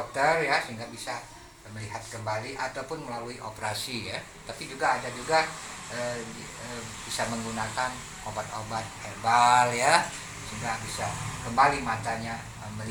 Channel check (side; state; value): both; identical; correlation 1.00